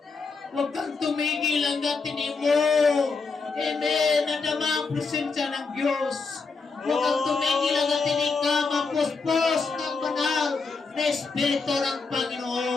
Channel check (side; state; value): right; quieter; 4.5 dB